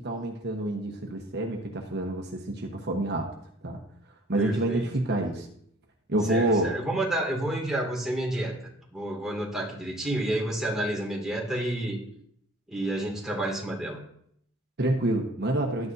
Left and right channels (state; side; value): normal; both; correlation 0.54